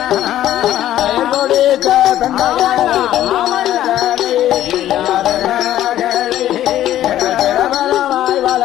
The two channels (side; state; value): right; quieter; 12.7 dB